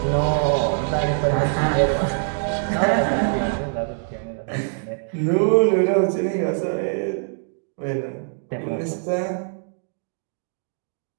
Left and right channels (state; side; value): silent; left; 63 dB below the other